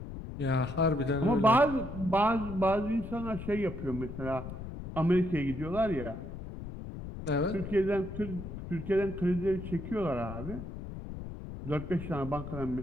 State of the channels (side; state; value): left; noise; rumble, 9 dB below the sound